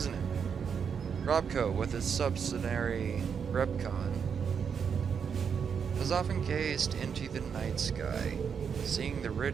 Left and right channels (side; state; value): left; quieter; 6.9 dB